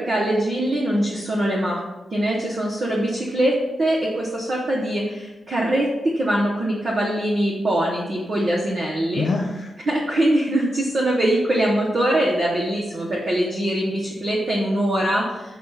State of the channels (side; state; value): both; normal; correlation 0.88